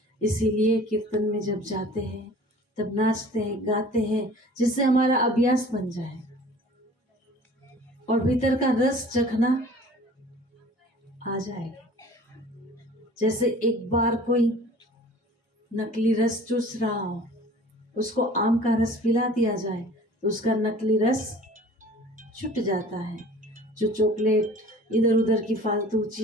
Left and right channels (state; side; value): normal; both; correlation 0.46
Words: इसीलिए कीर्तन में जब जाते हैं तब नाचते हैं, गाते हैं, जिससे हमारा अभ्यास बन जाए और भीतर का रस चखना आ जाए। जैसे एक बार कोई नकली रस चूस रहा हो, उसको आम का रस पिला दिया जाए तो उसका नकली रस छूट जाता है। जो चॉकलेट इधर उधर की फालतू